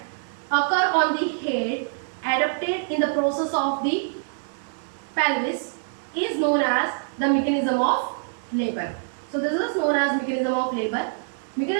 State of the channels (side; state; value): left; silent; digital silence